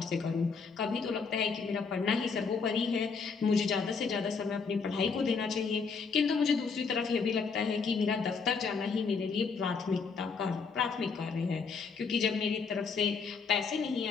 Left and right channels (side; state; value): right; quieter; 5.2 dB